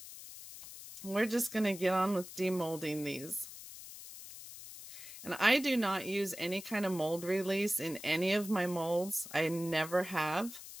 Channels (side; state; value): left; noise; hiss, 13 dB below the sound